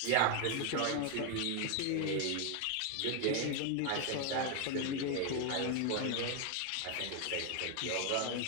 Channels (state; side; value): different; both; correlation 0.01